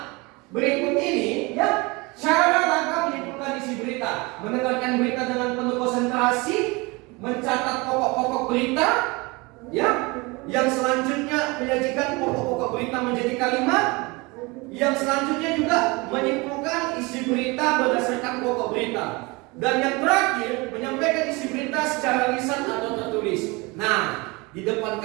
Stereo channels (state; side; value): quieter; left; 25.7 dB